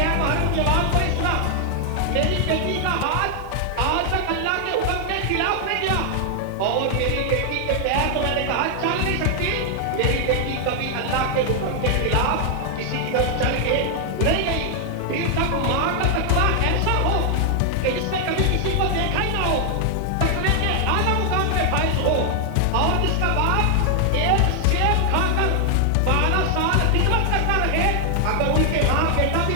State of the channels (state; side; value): different; both; correlation 0.00